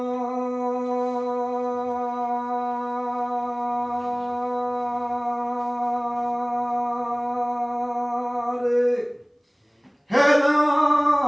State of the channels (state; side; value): identical; both; correlation 1.00